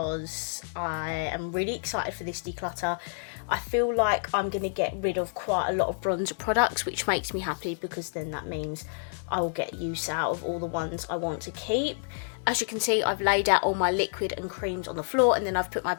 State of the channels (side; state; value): right; silent; 57 dB below the other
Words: I am really excited for this declutter. I feel like I'm going to get rid of quite a lot of bronzer products, which makes me happy because then that means I will get use out of all the ones I want to keep. As you can see, I've laid out all my liquid and creams on the floor, and then I've put my